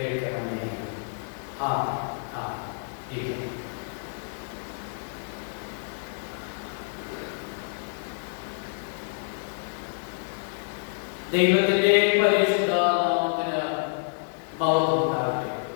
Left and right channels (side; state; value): right; silent; digital silence